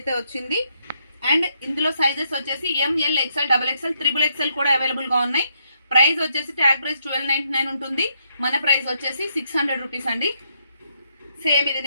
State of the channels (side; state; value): both; inverted; correlation -0.76